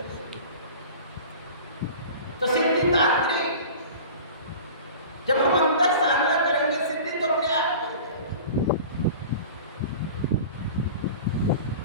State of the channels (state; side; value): inverted; both; correlation -0.38